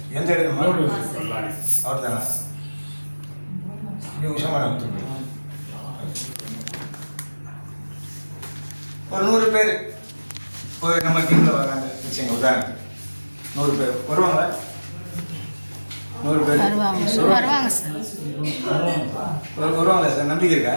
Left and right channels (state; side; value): inverted; both; correlation -1.00